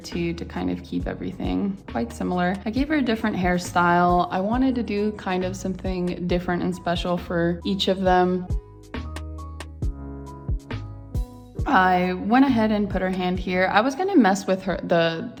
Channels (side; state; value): both; identical; correlation 1.00